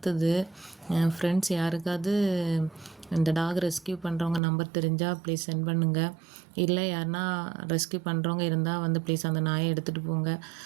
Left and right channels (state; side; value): drops out; left; at 4.4 s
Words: ஃப்ரெண்ட்ஸ் யாருக்காவது இந்த டாக் ரெஸ்கியூ பண்ணுறவங்க நம்பர் தெரிஞ்சால் ப்ளீஸ் சென்ட் பண்ணுங்கள். இல்லை யாருன்னா ரெஸ்கியூ பண்ணுறவங்க இருந்தால் ப்ளீஸ் அந்த நாயை எடுத்துகிட்டு போங்க.